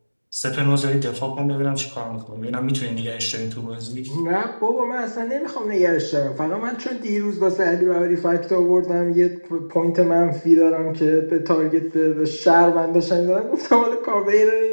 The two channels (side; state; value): both; inverted; correlation -1.00